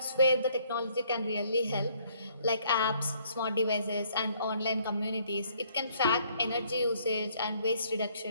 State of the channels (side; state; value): both; inverted; correlation -0.65